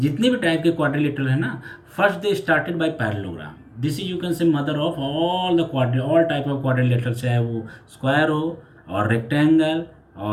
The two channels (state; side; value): identical; both; correlation 1.00